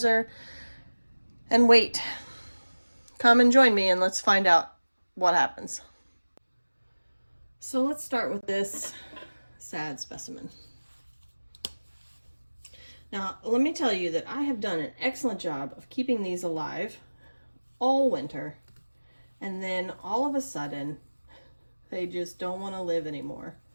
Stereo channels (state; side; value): inverted; both; correlation -1.00